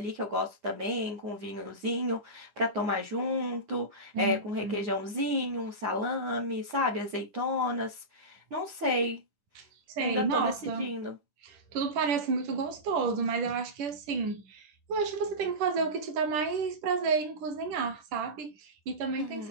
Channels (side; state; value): left; late; 10 ms